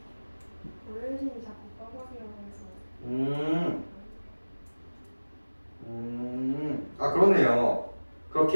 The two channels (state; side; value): inverted; both; correlation -1.00